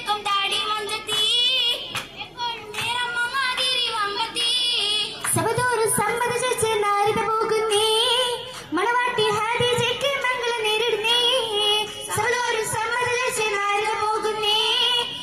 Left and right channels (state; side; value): identical; both; correlation 1.00